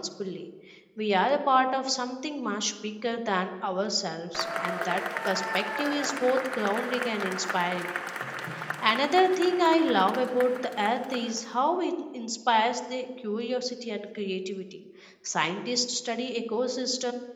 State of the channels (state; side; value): identical; both; correlation 1.00